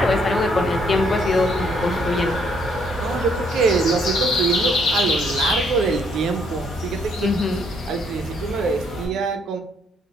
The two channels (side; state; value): both; normal; correlation 0.69